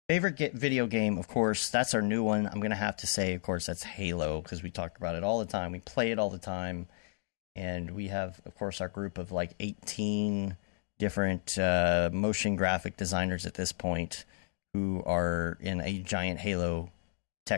favorite video game, of course, that's our new one. I'm going to have to say, of course, that's Halo, because we talk about it all the time. We play it all the time. And we have, of course, our group of like 18 different motion graphic designers at this point who are in a giant Halo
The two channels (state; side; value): silent; right; digital silence